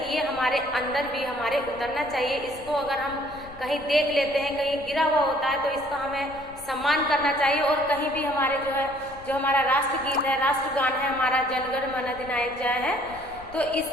ये हमारे अंदर भी हमारे उतरना चाहिए। इसको अगर हम कहीं देख लेते हैं, कहीं गिरा हुआ होता है, तो इसका हमें सम्मान करना चाहिए। और कहीं भी हमारे जो हमारा राष्ट्रगीत है, राष्ट्रगान है, हमारा जनगण मन अधिनायक जय है, तो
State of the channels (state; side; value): noise; left; rumble, 20 dB below the sound